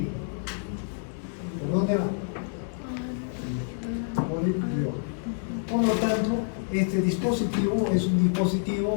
¿Por dónde va? Por el guión. Por lo tanto, este dispositivo es un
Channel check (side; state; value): right; silent; digital silence